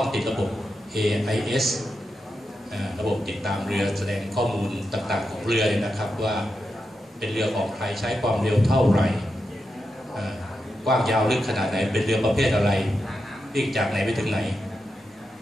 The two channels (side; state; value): both; normal; correlation 0.88